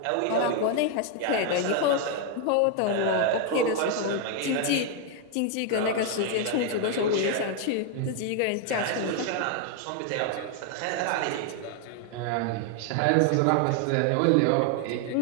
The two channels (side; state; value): both; different; correlation 0.00